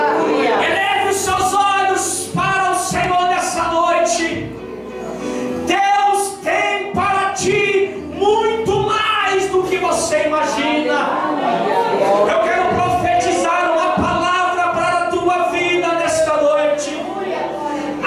os seus olhos para o Senhor nessa noite. Deus tem para ti muito mais do que você imagina. Eu quero profetizar uma palavra para a tua vida nesta noite.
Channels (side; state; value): both; identical; correlation 1.00